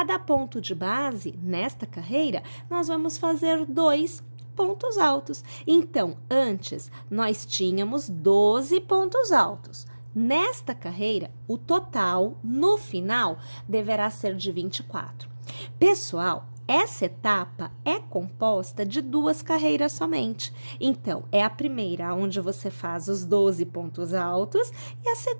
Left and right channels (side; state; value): both; inverted; correlation -1.00